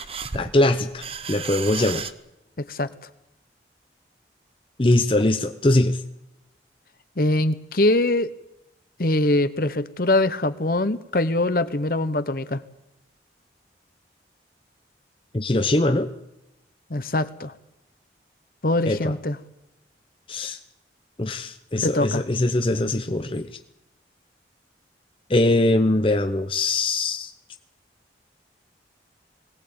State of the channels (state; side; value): normal; both; correlation 0.53